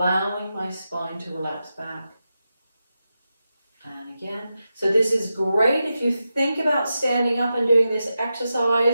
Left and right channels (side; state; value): both; inverted; correlation -0.90